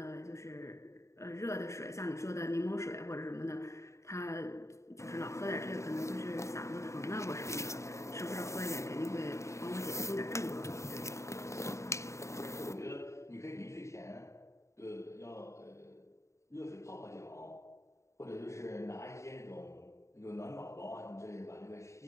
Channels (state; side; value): late; right; 0.14 ms